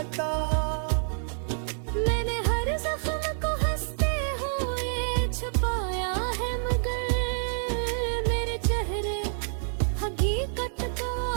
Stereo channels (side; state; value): left; silent; digital silence